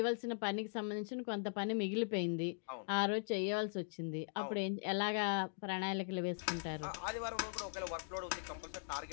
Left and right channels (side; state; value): right; silent; digital silence